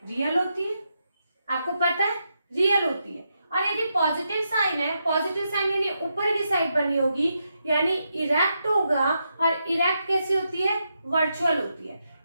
रियल होती है, आपको पता है रियल होती है। और यदि पॉजिटिव साइन है, पॉजिटिव साइन यानी ऊपर की साइड बनी होगी, यानी इरेक्ट होगा। और इरेक्ट कैसी होती है, वर्चुअल होती है।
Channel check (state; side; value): inverted; both; correlation -0.83